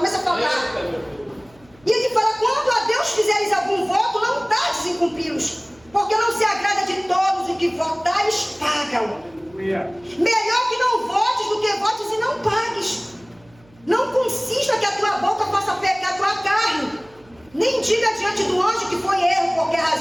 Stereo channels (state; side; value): noise; right; hum, 29 dB below the sound